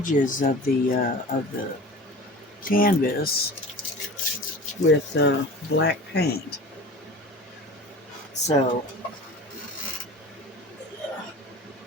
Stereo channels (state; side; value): normal; both; correlation 0.37